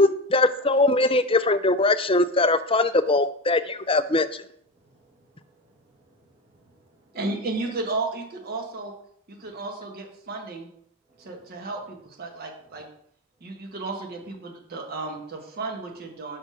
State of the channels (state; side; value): normal; both; correlation 0.22